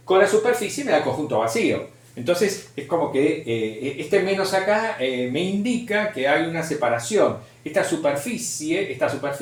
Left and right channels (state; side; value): identical; both; correlation 1.00